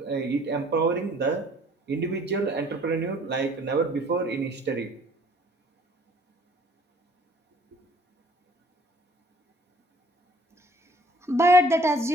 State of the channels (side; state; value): both; normal; correlation 0.56